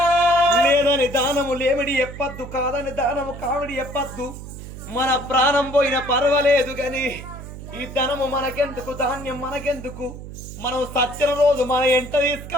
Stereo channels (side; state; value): right; noise; hum, 12 dB below the sound